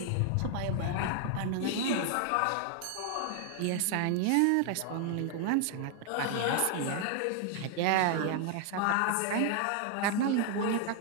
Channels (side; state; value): both; different; correlation 0.00